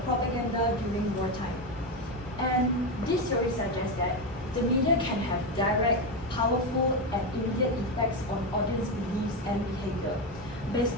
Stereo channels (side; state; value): both; normal; correlation 0.12